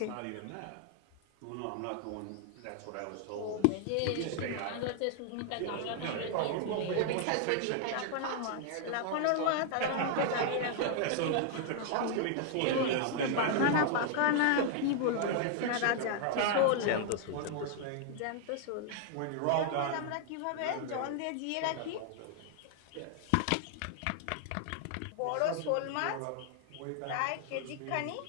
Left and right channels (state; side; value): different; both; correlation 0.00